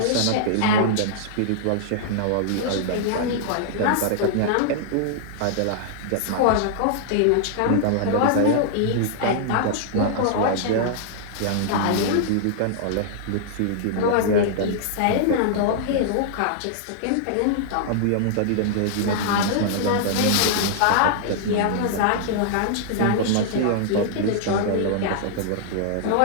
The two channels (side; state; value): both; different; correlation -0.01